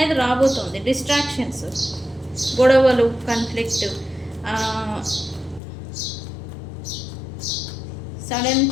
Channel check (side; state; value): right; drops out; at 5.6 s